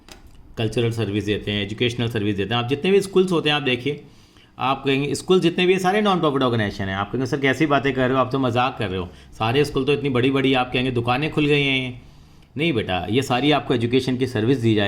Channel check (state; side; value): identical; both; correlation 1.00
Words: Cultural service देते हैं, educational service देते हैं। आप जितने भी schools होते हैं आप देखिए, आप कहेंगे स्कूल जितने भी सारे नॉन प्रॉफिट ऑर्गेनाइजेशन हैं। आप कहेंगे सर कैसी बातें कर रहे हो, आप तो मजाक कर रहे हो, सारे स्कूल तो इतनी बड़ी बड़ी, आप कहेंगे दुकानें खुल गई हैं। नहीं बेटा, ये सारी आपको एजुकेशन की सर्विस दी जा